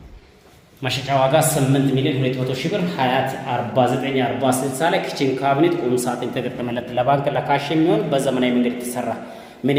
መሸጫ ዋጋ 8,200,000 ብር ሀያት 4940 ላይ ኪችን ካቢኔት ቁም ሳጥን የተገጠመለት ለባንክ ለካሽ የሚሆን በዘመናዊ መንገድ የተሰራ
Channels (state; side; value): identical; both; correlation 1.00